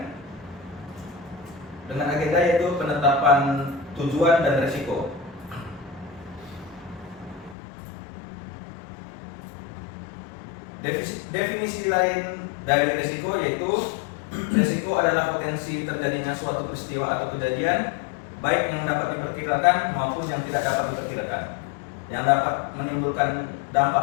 dengan agenda yaitu penetapan tujuan dan risiko. Definisi lain dari risiko yaitu risiko adalah potensi terjadinya suatu peristiwa atau kejadian baik yang dapat diperkirakan maupun yang tidak dapat diperkirakan, yang dapat menimbulkan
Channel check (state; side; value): drops out; right; at 7.6 s